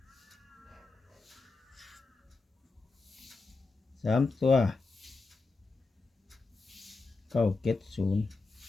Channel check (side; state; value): right; quieter; 3.8 dB